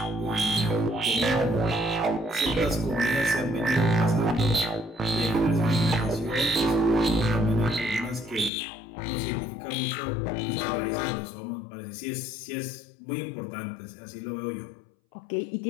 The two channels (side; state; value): right; drops out; at 8.5 s